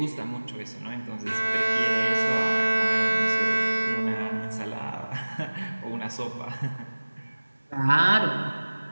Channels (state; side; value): inverted; both; correlation -1.00